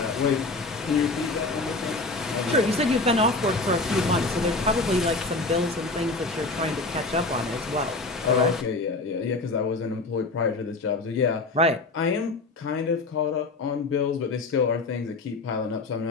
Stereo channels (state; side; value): quieter; right; 3.4 dB